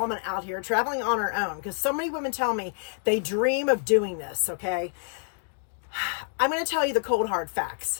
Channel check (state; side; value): silent; right; digital silence